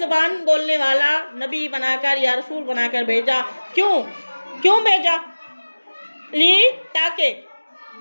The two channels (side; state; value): both; inverted; correlation -1.00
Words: बोलने वाला नबी बनाकर या रसूल बनाकर भेजा। क्यों भेजा? ली ताकि